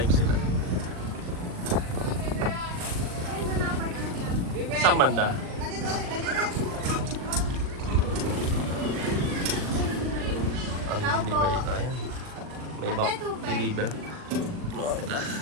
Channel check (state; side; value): late; left; 39 ms